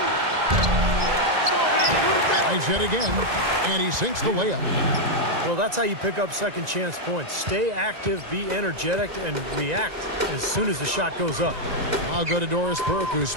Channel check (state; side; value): late; left; 1.9 ms